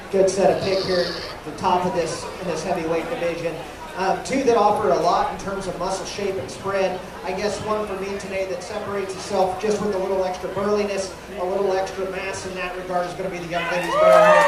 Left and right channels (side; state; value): both; identical; correlation 1.00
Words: Good set of pig here at the top of this in this heavyweight division. Two that offer a lot in terms of muscle shape and spread. I guess one for me today that separates itself just with a little extra burliness, a little extra mass in that regard is going to be the young lady's barrow